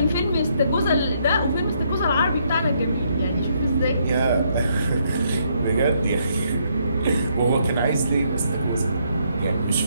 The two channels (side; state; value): both; inverted; correlation -0.73